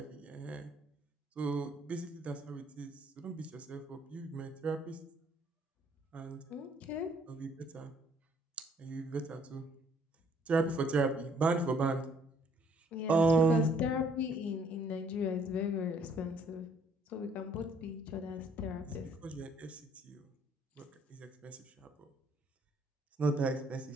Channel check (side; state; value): both; normal; correlation 0.64